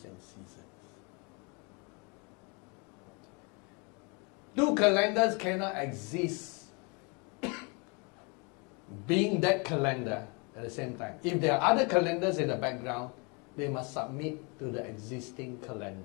and seasons. Two calendars cannot exist being that calendar at the same time. If there are other calendars in the background, they must submit to the existing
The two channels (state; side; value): quieter; right; 31.9 dB